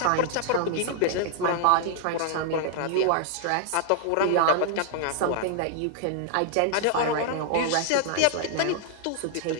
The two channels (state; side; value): different; both; correlation -0.01